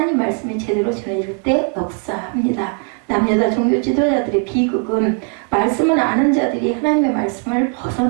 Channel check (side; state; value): left; quieter; 36.5 dB